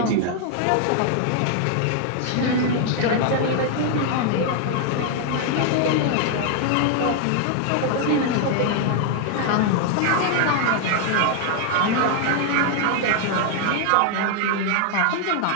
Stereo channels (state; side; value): different; both; correlation 0.00